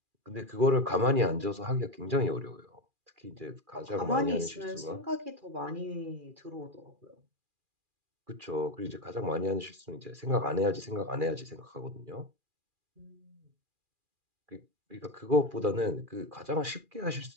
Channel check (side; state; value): left; late; 2.4 ms